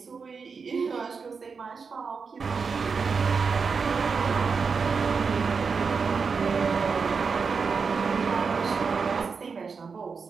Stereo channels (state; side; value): quieter; left; 5.3 dB